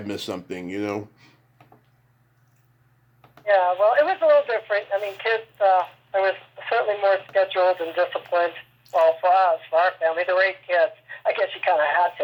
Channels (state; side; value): identical; both; correlation 1.00